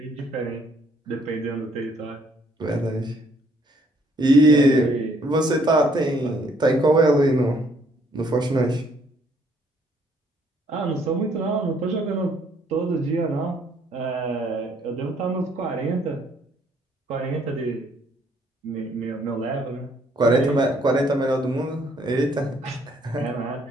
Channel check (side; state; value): both; normal; correlation 0.66